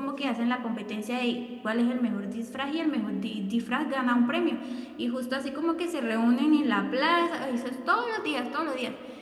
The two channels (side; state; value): both; identical; correlation 1.00